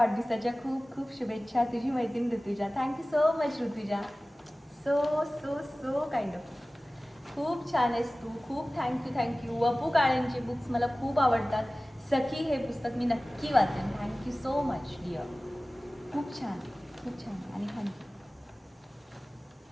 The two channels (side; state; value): both; normal; correlation 0.97